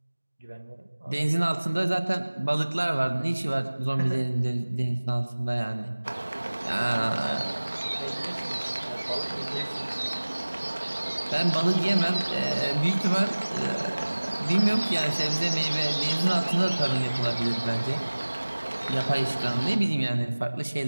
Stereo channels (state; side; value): inverted; both; correlation -1.00